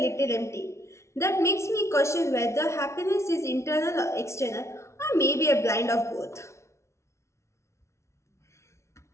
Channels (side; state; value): right; late; 0.13 ms